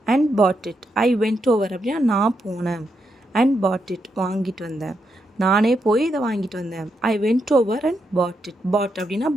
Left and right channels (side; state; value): both; normal; correlation 0.82